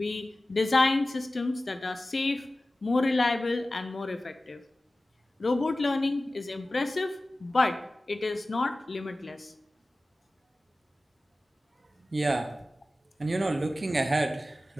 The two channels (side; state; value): both; normal; correlation 0.96